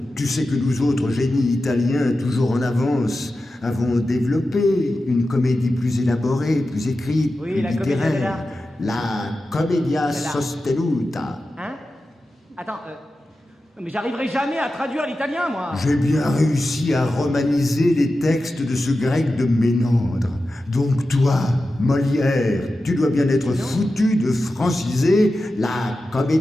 tu sais que nous autres génies italiens, toujours en avance, avons développé une comédie plus élaborée, plus écrite, Oui, plus la commedia littéraire. La commedia dell'arte. sostenuta. Hein? Attends, mais j'arriverai jamais à traduire l'italien, moi. J'ai bien réussi à romaniser les textes de ce grec de Ménandre. Donc toi, Molière, tu dois bien être foutu de franciser la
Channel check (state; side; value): normal; both; correlation 0.92